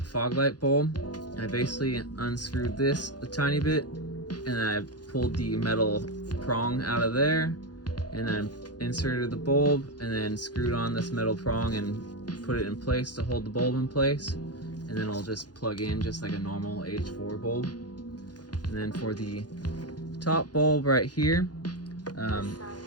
fog light bulb, I basically unscrewed this a tiny bit, and then I pulled the metal prong out of there, and then inserted the bulb, and then screwed on this metal prong and put it in place to hold the bulb in place. And then it'll just plug in just like a normal H4 bulb. And then for the top bulb right here,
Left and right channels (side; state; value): right; late; 0.69 ms